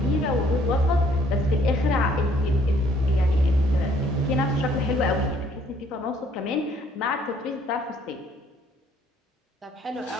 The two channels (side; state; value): both; normal; correlation 0.63